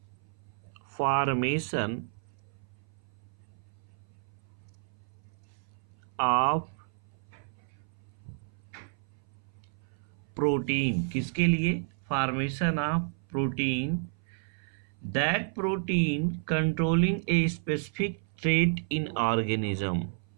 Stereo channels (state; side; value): silent; left; 57 dB below the other